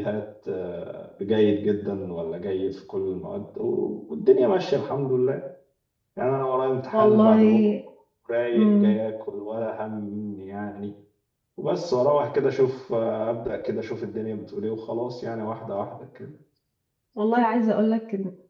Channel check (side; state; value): both; identical; correlation 1.00